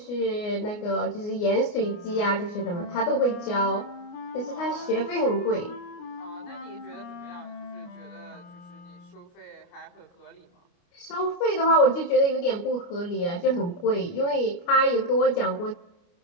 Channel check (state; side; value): late; right; 29 ms